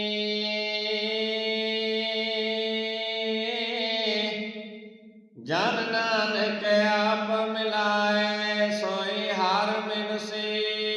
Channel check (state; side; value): identical; both; correlation 1.00